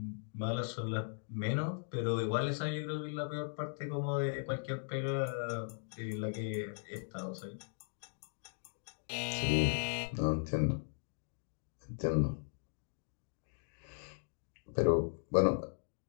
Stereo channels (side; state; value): right; silent; digital silence